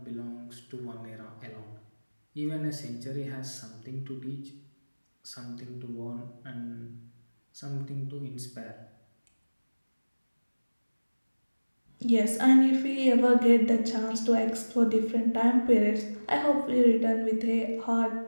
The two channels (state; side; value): inverted; both; correlation -1.00